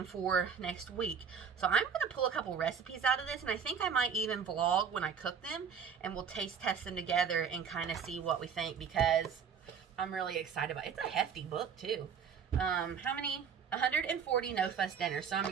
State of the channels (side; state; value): left; quieter; 7.0 dB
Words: for next week. So I'm going to pull a couple recipes out of this, and I think I might even vlog when I cook them, and we'll taste test them together and kind of see what we think, because I'm really excited about it. It's a hefty book too. How many? 140 no fuss dinners. So I'm